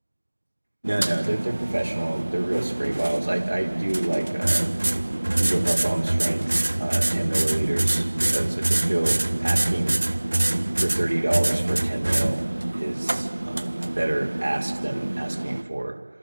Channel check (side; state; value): both; inverted; correlation -1.00